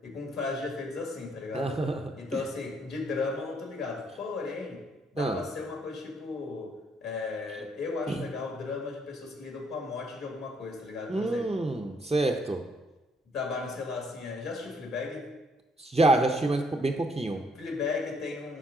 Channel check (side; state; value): both; normal; correlation 0.68